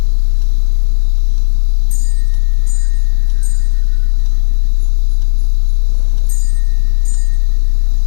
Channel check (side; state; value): right; silent; 70 dB below the other